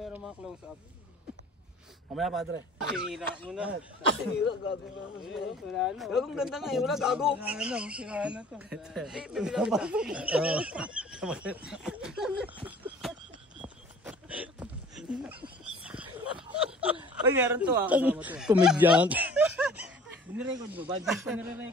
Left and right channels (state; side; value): normal; both; correlation 0.49